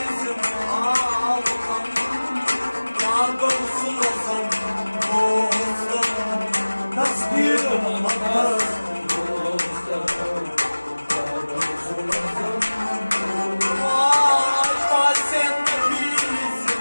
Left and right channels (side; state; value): both; inverted; correlation -1.00